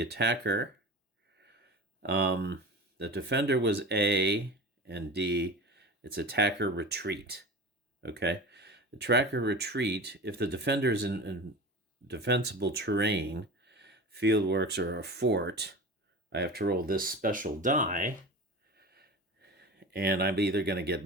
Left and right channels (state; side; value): normal; both; correlation 0.31